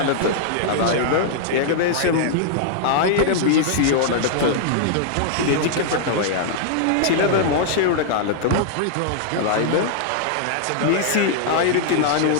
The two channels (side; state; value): both; different; correlation -0.01